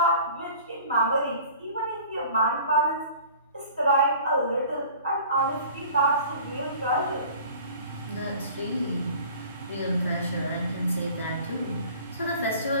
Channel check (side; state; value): both; inverted; correlation -0.46